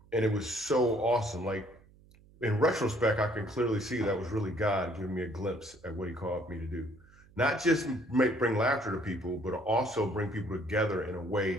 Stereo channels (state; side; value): noise; right; hum, 26 dB below the sound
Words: And it was so awesome. Like in retrospect, I can clearly see that was really God giving me a glimpse at what he called me to do. Not just bring laughter to people, but also bring people together in a